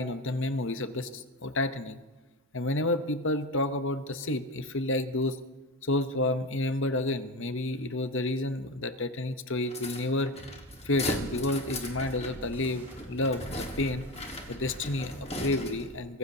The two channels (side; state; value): both; normal; correlation 0.23